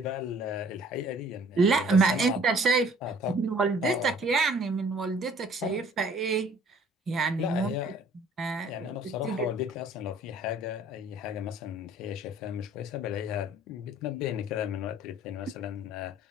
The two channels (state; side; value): normal; both; correlation 0.55